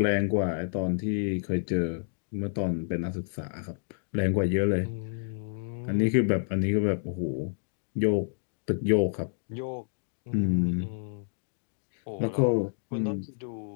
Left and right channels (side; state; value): right; silent; digital silence